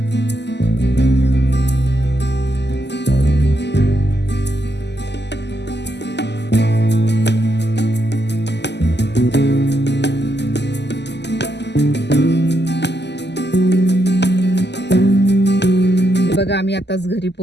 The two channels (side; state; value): right; late; 0.50 ms